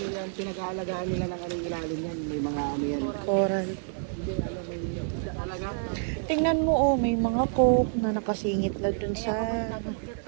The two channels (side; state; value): left; silent; digital silence